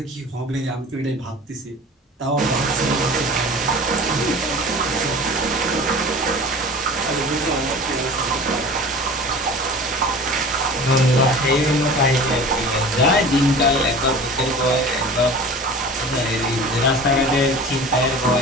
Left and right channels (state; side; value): normal; both; correlation 0.39